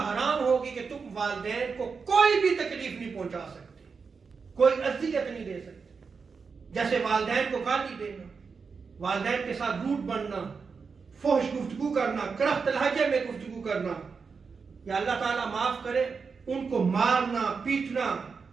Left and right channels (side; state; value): left; quieter; 5.3 dB